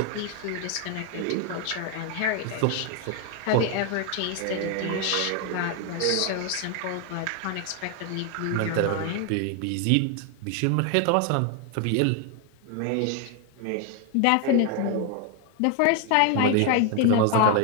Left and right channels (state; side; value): different; both; correlation 0.01